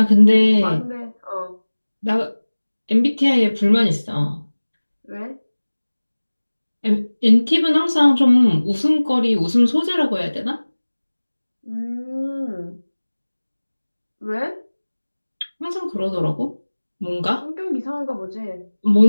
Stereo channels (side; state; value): both; inverted; correlation -1.00